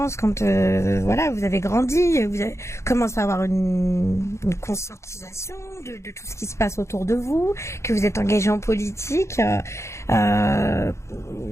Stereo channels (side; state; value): right; late; 0.14 ms